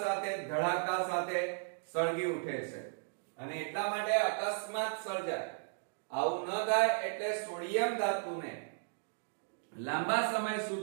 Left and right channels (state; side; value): silent; left; digital silence